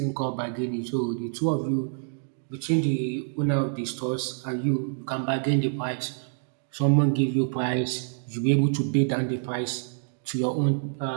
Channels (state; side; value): silent; left; digital silence